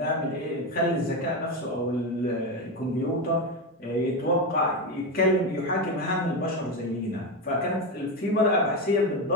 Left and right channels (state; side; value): normal; both; correlation 0.14